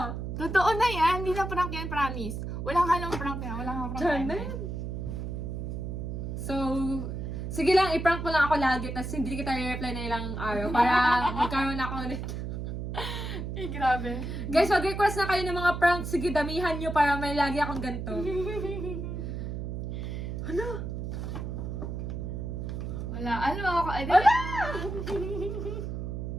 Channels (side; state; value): right; noise; hum, 5 dB below the sound